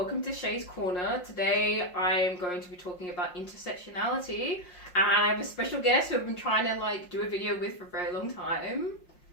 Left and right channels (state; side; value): late; right; 5.6 ms